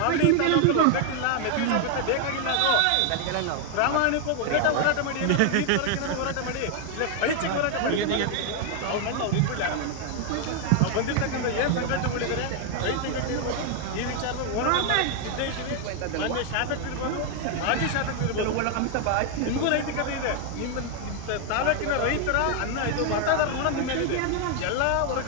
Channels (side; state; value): both; different; correlation 0.00